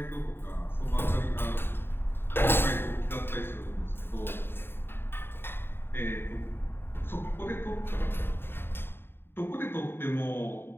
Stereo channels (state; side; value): late; right; 0.11 ms